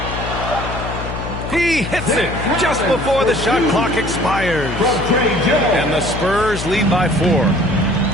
He hits it just before the shot clock expires. And the Spurs lead by 4.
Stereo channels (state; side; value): noise; left; hum, 7 dB below the sound